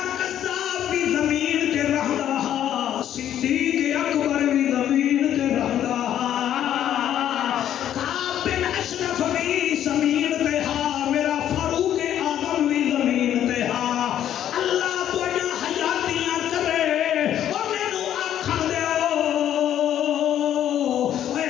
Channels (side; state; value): right; quieter; 10.8 dB